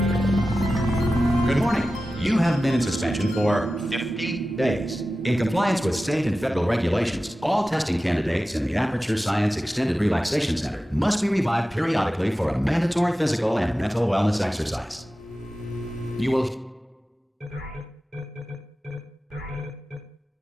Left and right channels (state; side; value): normal; both; correlation 0.94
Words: morning. You have been in suspension for 50 days. In compliance with state and federal regulations, all testing candidates in the Aperture Science Extended Relaxation Center must be revived periodically for a mandatory physical and mental wellness exercise. You will